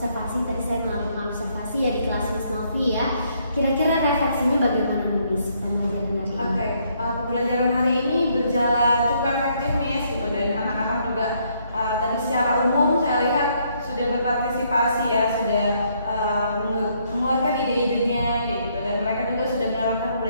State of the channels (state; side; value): inverted; both; correlation -0.70